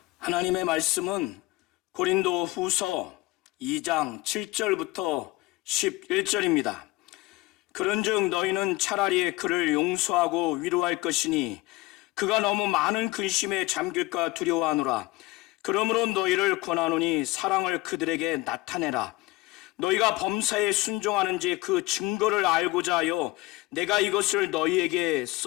하나님의 말씀은 고린도 후서 2장 7절부터 11절입니다. 그런즉 너희는 차라리 그를 용서하고 위로할 것이니 그가 너무 많은 근심에 잠길까 두려워하노라. 그러므로 너희를 권하노니 사랑을 그들에게 나타내라. 너희가 범사에 순종하는지 그 증거를 알고자 하여 내가 이것을 너희에게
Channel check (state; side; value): quieter; right; 20.9 dB